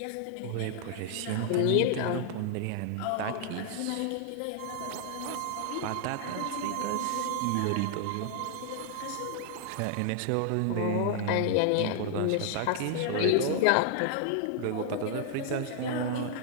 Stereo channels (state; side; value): different; both; correlation 0.00